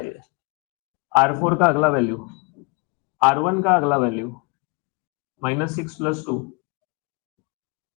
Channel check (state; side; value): quieter; right; 32.0 dB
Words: ये। R4 का अगला वैल्यू, R1 का अगला वैल्यू -6 + 2,